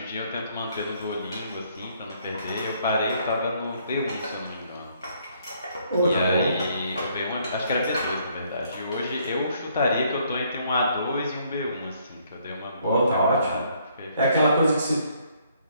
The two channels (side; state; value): both; inverted; correlation -0.67